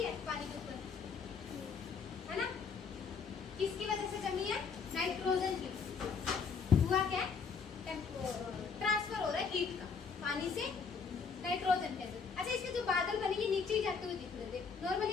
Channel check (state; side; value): quieter; right; 5.5 dB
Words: है पानी के ऊपर, है ना? किसकी वजह से जमी है? नाइट्रोजन की। हुआ क्या? ट्रांसफर हो रहा है हीट का पानी से नाइट्रोजन के अंदर। अच्छा, इसके जो बादल बने ये नीचे ही जाते हुए दिख रहे थे। नॉर्मली